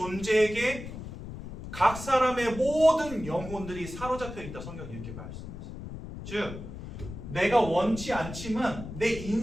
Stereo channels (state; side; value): noise; left; rumble, 10 dB below the sound